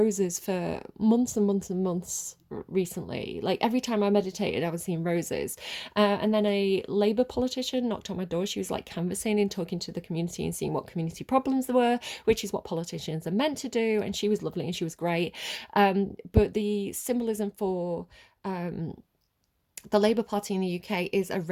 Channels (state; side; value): identical; both; correlation 1.00